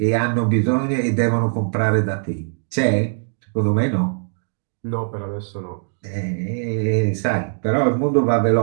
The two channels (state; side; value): silent; left; digital silence